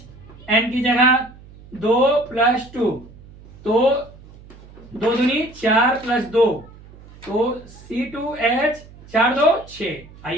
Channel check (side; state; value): right; noise; hum, 21 dB below the sound